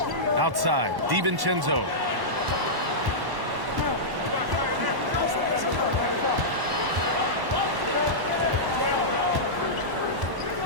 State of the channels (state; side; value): late; left; 1.1 ms